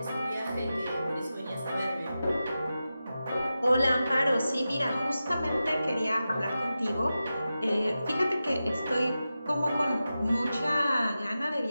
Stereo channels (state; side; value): inverted; both; correlation -0.93